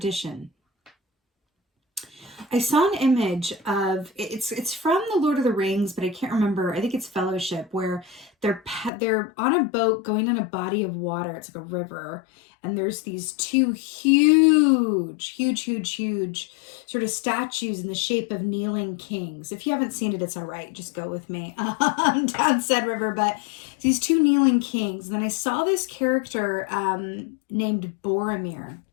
I saw an image of it's from the Lord of the Rings, but I can't remember. I think it's Fellowship, where they're on a boat going in a body of water. It's like a river, and there's these two huge sort of statues in the shape of kneeling kings. If you haven't seen it, it's all right. Just go with me down said river. But these two kneeling kings. And then I saw this character named Boromir,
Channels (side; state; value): right; drops out; at 8.9 s